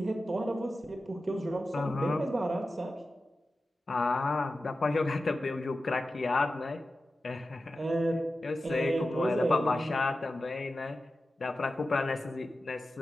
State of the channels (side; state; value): both; normal; correlation 0.93